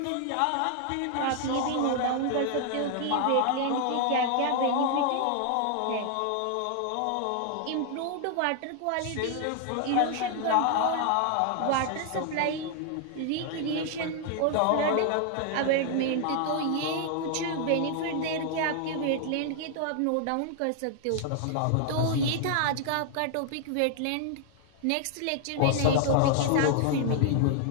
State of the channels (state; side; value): different; both; correlation 0.00